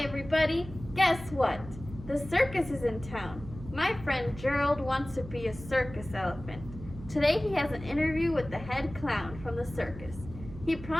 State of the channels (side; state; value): right; noise; hum, 13 dB below the sound